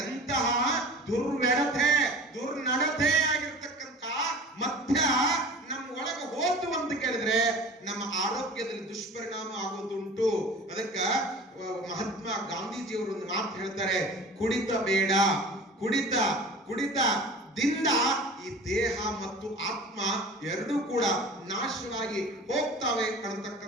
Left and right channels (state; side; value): normal; both; correlation 0.40